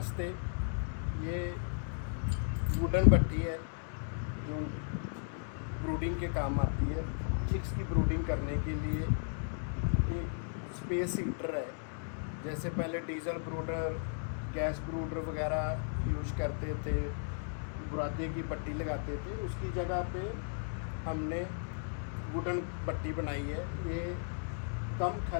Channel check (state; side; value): silent; right; digital silence